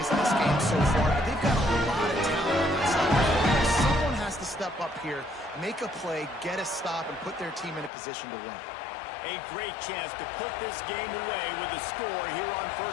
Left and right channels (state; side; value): drops out; right; at 7.9 s